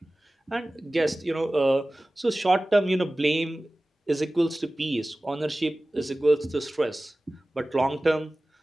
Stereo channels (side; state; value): both; normal; correlation 0.97